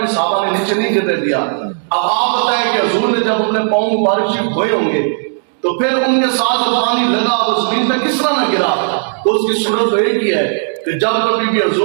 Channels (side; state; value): left; silent; digital silence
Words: صحابہ نے نیچے نہیں گرنے دیا۔ اب آپ بتائیں کہ حضور نے جب اپنے پاؤں مبارک شریف دھوئے ہوں گے تو پھر ان کے ساتھ جو پانی لگا وہ زمین پہ کس طرح نہ گرا؟ تو اس کی صورت تو ایک ہی ہے کہ جب کبھی بھی